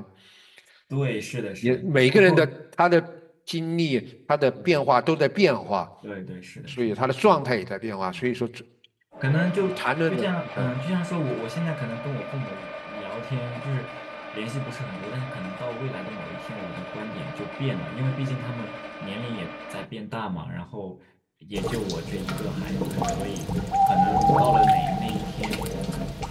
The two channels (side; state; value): both; identical; correlation 1.00